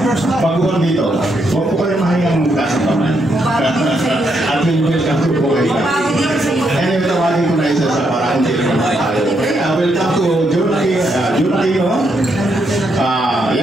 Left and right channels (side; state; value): both; normal; correlation 0.78